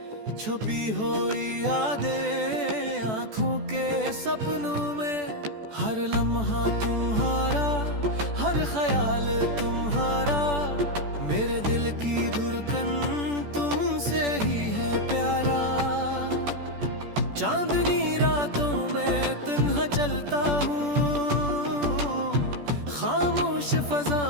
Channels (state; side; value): late; left; 14 ms